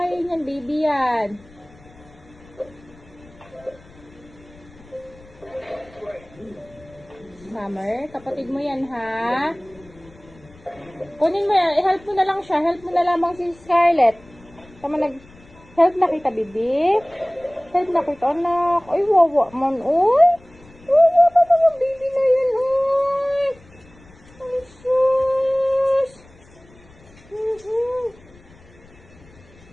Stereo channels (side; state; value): left; noise; rumble, 25 dB below the sound